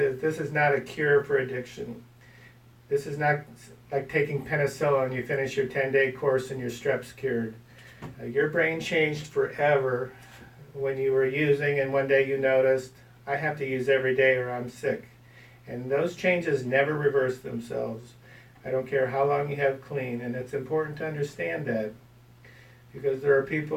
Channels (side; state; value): both; identical; correlation 1.00